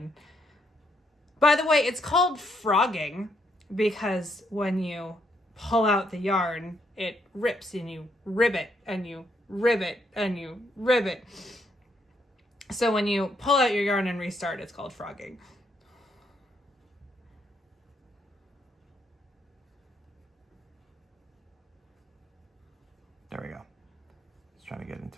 By the way, it's called frogging because when you pull out the yarn, it rips and you ribbit and you ribbit and you ribbit. So when you pull out your yarn and restart, it's called frogging. There we go. I was trying to get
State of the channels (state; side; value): normal; both; correlation 0.74